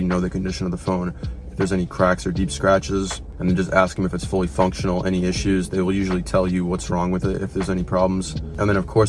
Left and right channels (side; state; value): both; identical; correlation 1.00